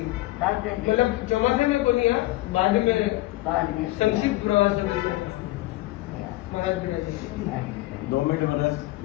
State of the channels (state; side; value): quieter; right; 18.4 dB